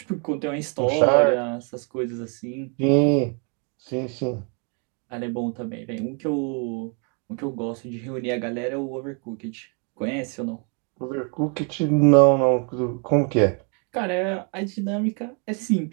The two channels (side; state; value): left; quieter; 37.6 dB